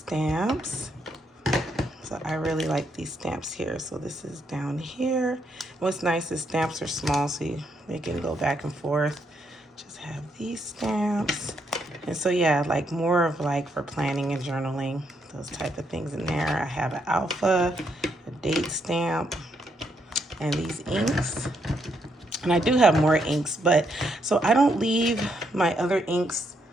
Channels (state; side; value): normal; both; correlation 0.76